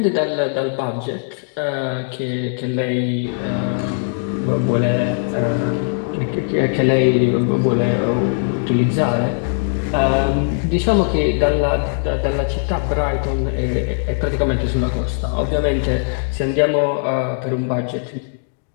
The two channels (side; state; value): right; silent; 62 dB below the other